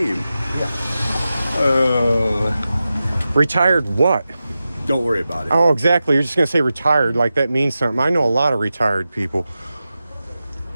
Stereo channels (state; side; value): inverted; both; correlation -0.93